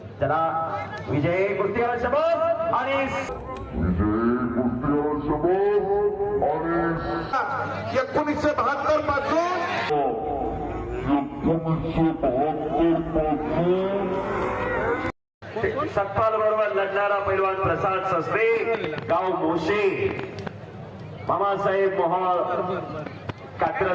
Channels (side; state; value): both; identical; correlation 1.00